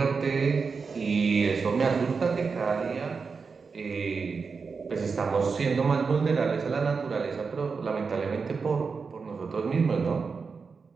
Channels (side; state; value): left; quieter; 5.1 dB